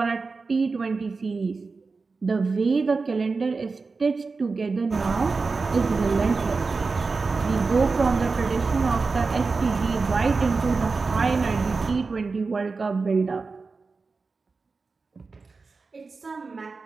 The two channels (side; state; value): left; quieter; 4.3 dB